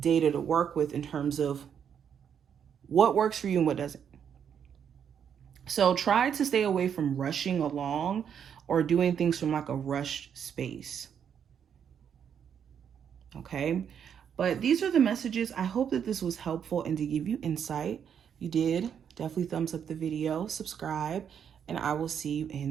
to work with in terms of what works for you and what doesn't. So try to stay away from rushing along or doing things from like a rushed space. Okay, but these are the messages. I hope that this was helpful and to give you insight. If you did, definitely thumbs up the video, subscribe, and I will see you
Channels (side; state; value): left; quieter; 8.1 dB